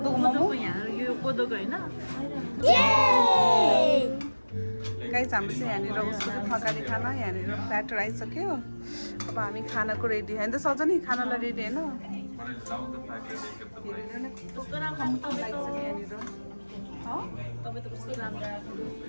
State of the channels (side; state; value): both; inverted; correlation -1.00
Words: मोमो यहाँ यो कोदोको होइन? गाइस हाम्रो चाहिँ यहाँनिर उसको चाहिँ थकाली खाना यहाँनिर प्याटर आइसक्यो। अब हामी खानाको रेडी होइन त सजनी? खानालाई रेडी होइन? तपाईँ त कस्तो राम्रो।